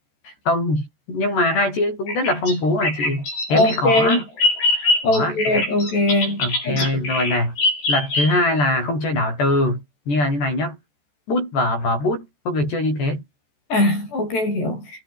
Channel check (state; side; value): late; right; 14 ms